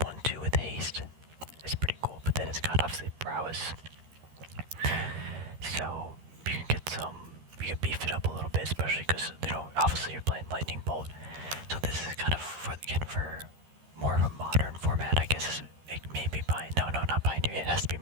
1/2 with haste. It's pretty cool, but then it's got obviously prowess. So you can beef it up a little bit, especially because, obviously you're playing Lightning Bolt. So this is kind of, for more of a modern format, I guess. It may be not Pioneer, it has to be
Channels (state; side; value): late; left; 13 ms